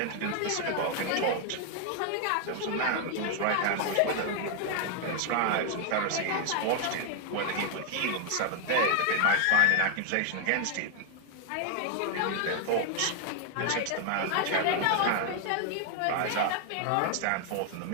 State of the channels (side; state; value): both; different; correlation 0.00